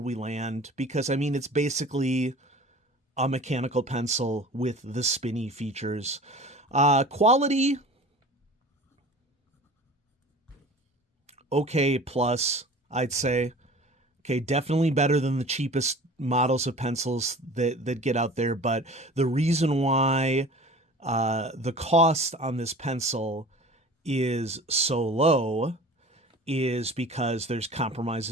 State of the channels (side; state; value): both; normal; correlation 0.41